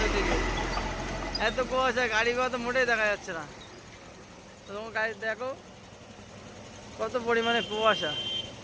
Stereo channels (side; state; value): both; identical; correlation 1.00